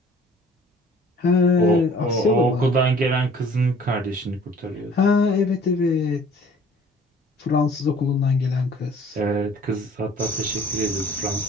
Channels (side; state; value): both; normal; correlation 0.52